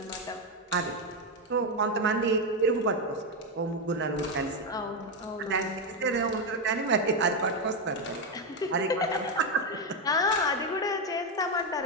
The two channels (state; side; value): normal; both; correlation 0.07